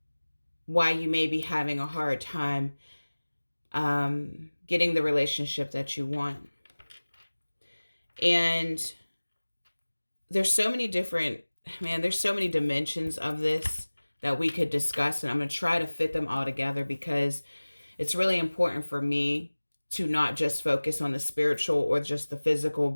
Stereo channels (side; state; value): both; inverted; correlation -1.00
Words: why you may be having a hard time getting the relationship that you want. And there's so many there's so many dimensions of this that we could discuss, and I'm going to try to fit them all together because it's really important for me to not just focus on the spiritual or just the physical,